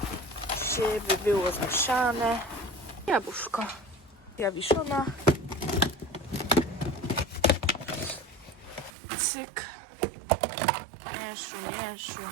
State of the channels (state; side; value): drops out; left; at 8.9 s